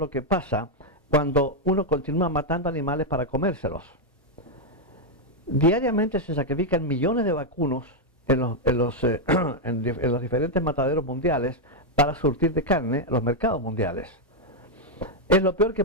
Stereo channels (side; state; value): both; normal; correlation 0.00